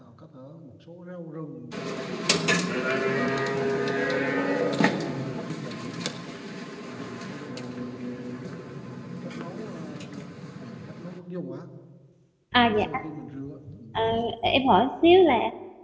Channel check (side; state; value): both; identical; correlation 1.00